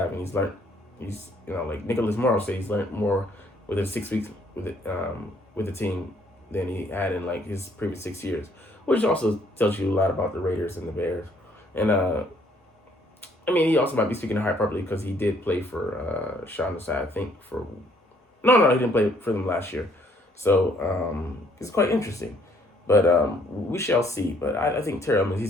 and he's learned. He's like Nicholas Morrow said, he's learned more within 6 weeks with the team than he had in like his previous 6 years, which also tells you a lot about the Raiders and the Bears. And he also might be speaking to hyperbole because he did play for Sean Desai, I think he didn't play for them last year. So it's quite interesting. But we shall see. But I think Terrell, I mean,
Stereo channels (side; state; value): both; normal; correlation 0.65